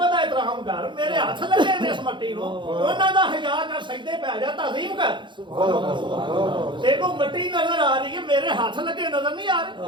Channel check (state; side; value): late; left; 0.23 ms